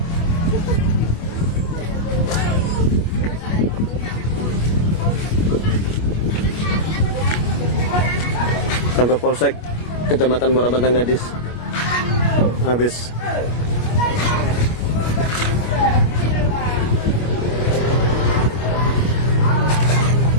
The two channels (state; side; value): late; right; 25 ms